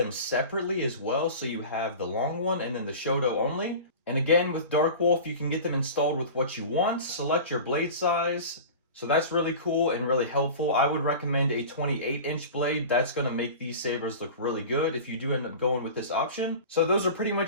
separately as well. So you have the long one and then the Shoto only. And again, with Dark Wolf, you can get them installed with what you want. Select your blade size. So that's really cool and really helpful. I would recommend a 28-inch blade. That's going to make these sabers look really good if you do end up going with this option. So those are pretty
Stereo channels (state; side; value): inverted; both; correlation -0.35